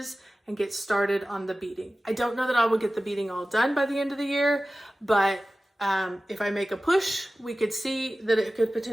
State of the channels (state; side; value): normal; both; correlation 0.96